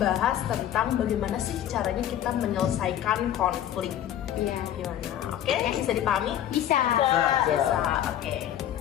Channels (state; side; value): quieter; right; 11.2 dB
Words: tentang bagaimana sih caranya kita menyelesaikan konflik. Iya, gimana? Oke, bisa dipahami? Bisa. Oke.